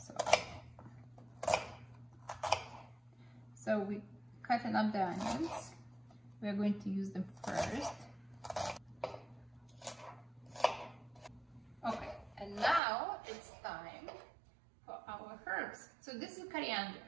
So we cutting up the onions. We're going to use them first. Okay, and now it's time for our herbs. So this is coriander.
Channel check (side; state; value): left; drops out; at 12.8 s